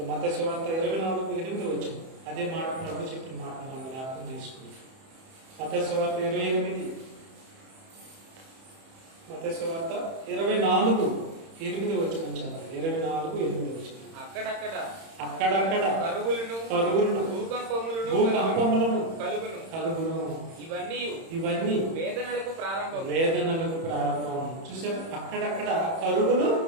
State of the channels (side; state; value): left; late; 31 ms